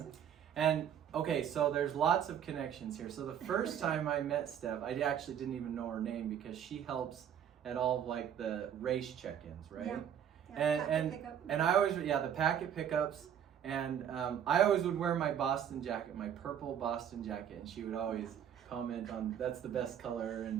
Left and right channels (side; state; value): left; quieter; 9.1 dB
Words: And okay, so there's lots of connections here. So the first time I met Steph, I actually didn't even know her name because she helps at all of like the race check-ins, right? Yeah. And I always, the packet pickups, and I always would wear my Boston jacket, my purple Boston jacket, and she would always comment on that's the best color,